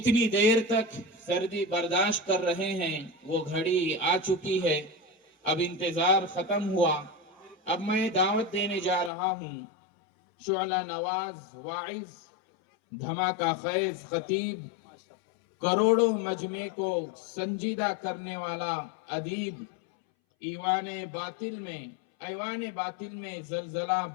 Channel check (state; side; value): drops out; right; at 9.1 s